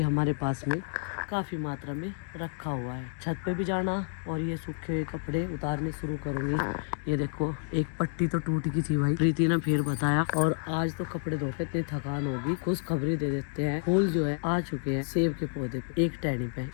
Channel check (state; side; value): silent; right; 58 dB below the other